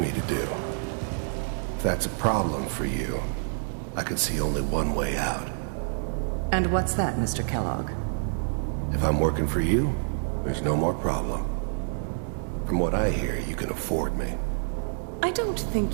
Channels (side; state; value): left; silent; digital silence